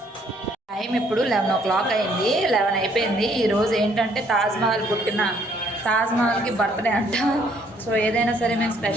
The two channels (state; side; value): normal; both; correlation 0.65